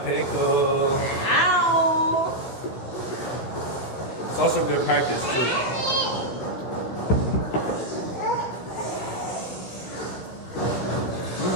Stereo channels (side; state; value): right; late; 16 ms